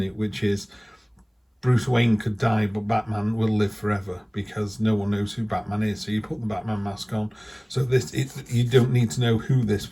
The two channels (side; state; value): both; identical; correlation 1.00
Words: it, which is Bruce Wayne could die, but Batman will live forever because no one knows who Batman is. So you put the Batman mask on. So you don't need to know who this